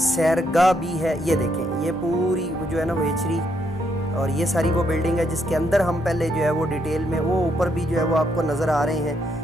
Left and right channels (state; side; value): normal; both; correlation 0.75